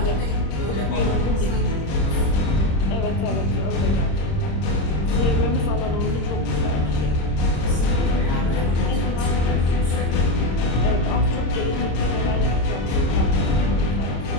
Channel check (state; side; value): late; right; 26 ms